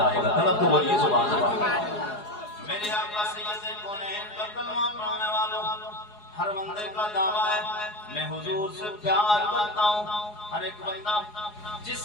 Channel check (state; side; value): late; right; 4.8 ms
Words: آئے گا. طلب تو بولیے سبحان اللہ. میرے آقا سید کونین کا کلمہ پڑھنے والوں ہر بندے کا دعویٰ ہے میں حضور سے پیار کرتا ہوں. ہر ایک بندہ جس